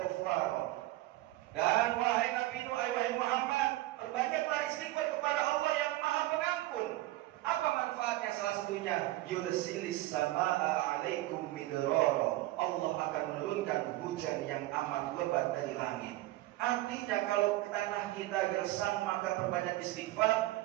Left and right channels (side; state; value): left; quieter; 17.5 dB